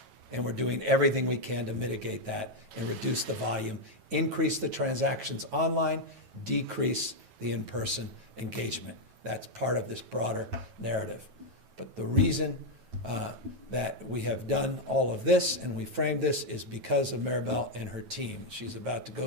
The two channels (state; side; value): late; left; 9.2 ms